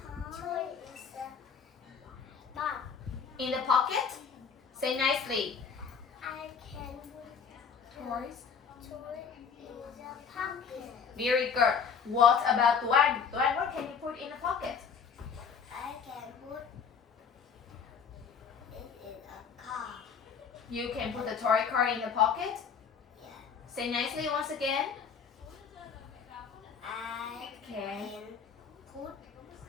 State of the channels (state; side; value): quieter; right; 6.5 dB